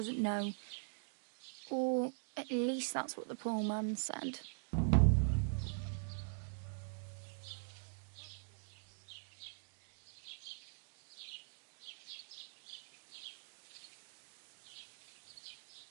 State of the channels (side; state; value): left; silent; digital silence